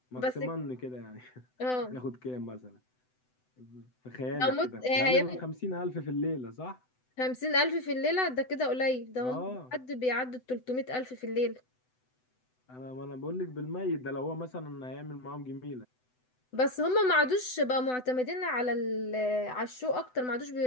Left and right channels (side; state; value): right; late; 7.9 ms